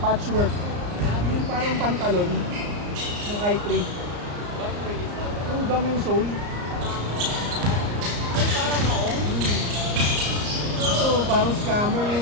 patchwork. Yung parang pantalon ng i3. What grade is that? Yung gum yung sole. Ay, parang maong. Ito, parang scammer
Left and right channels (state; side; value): late; left; 34 ms